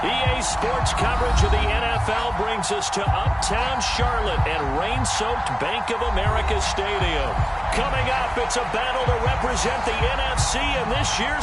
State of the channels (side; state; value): both; identical; correlation 1.00